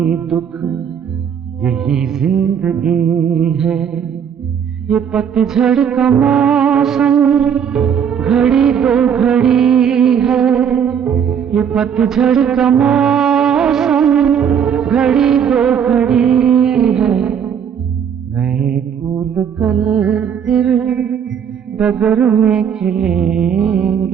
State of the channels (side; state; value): left; quieter; 7.9 dB